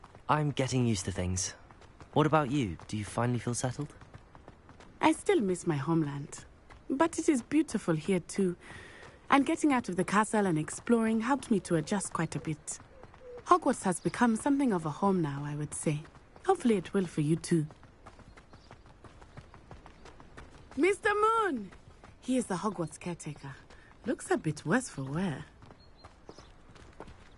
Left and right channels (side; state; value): both; identical; correlation 1.00